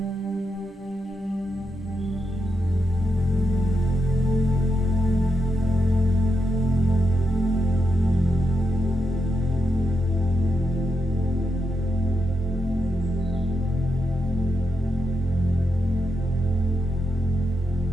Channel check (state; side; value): normal; both; correlation 0.85